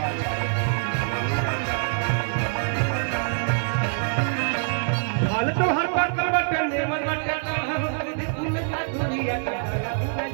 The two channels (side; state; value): left; silent; 62 dB below the other